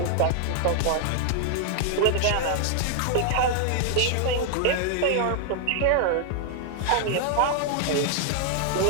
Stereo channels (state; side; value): different; both; correlation 0.00